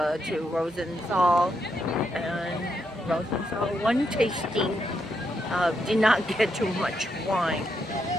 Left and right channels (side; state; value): both; normal; correlation 0.80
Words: Rosenthal, and Rosenthal one tasting. Did not get too much wine,